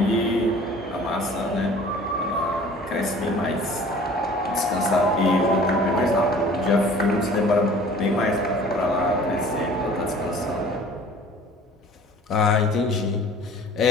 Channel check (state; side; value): normal; both; correlation 0.48